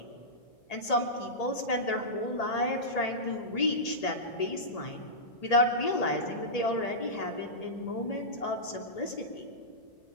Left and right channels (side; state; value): right; late; 1.8 ms